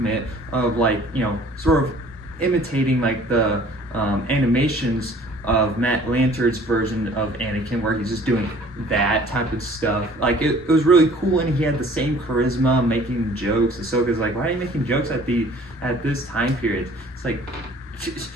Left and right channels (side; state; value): both; normal; correlation 0.52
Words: of, like, sort of imitating like the animations of Matt Lanter's version of Anakin, where he's just doing that type of stuff. Like, it was really cool, and he had the same charisma, making jokes. Ahsoka's like, why are you making jokes at this time period? It's like,